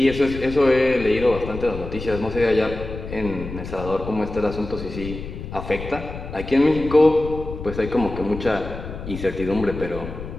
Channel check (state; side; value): noise; left; rumble, 9 dB below the sound